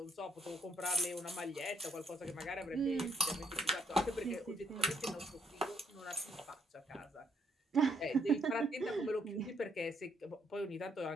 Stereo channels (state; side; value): normal; both; correlation 0.72